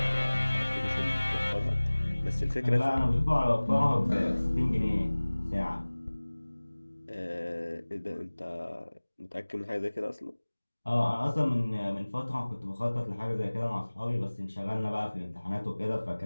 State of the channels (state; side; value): inverted; both; correlation -1.00